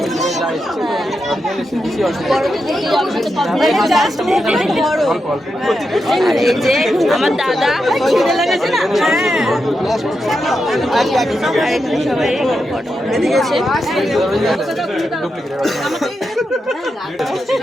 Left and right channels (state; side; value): normal; both; correlation 0.86